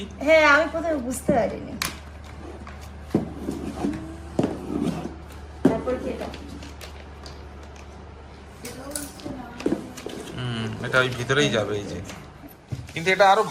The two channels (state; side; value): identical; both; correlation 1.00